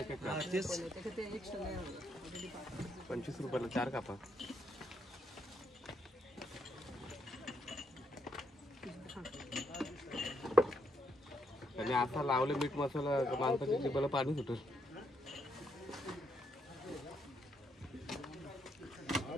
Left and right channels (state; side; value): normal; both; correlation 0.77